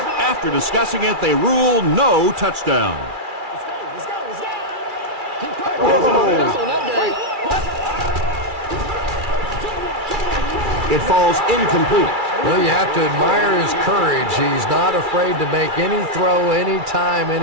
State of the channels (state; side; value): late; left; 2.3 ms